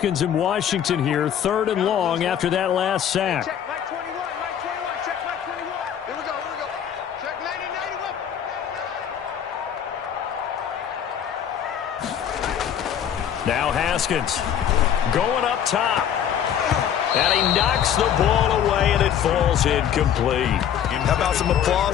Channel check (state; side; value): quieter; right; 9.2 dB